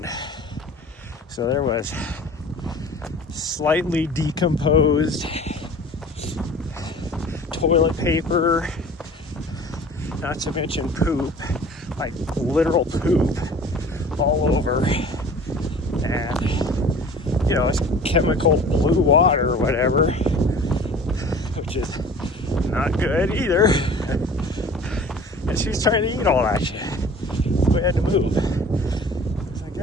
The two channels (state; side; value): normal; both; correlation 0.45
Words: So there was slightly decomposed toilet paper, not to mention poop, like literal poop all over, and you know, it's chemical blue water or whatever, which is not good either. And she's trying to eat all that shit. We had to move. It's like,